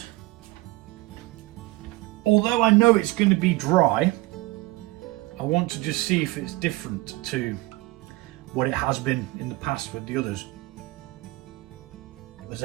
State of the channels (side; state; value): left; quieter; 20.6 dB